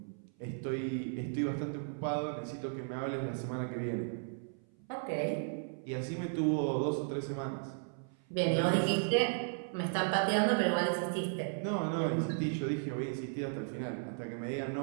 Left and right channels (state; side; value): silent; left; 54 dB below the other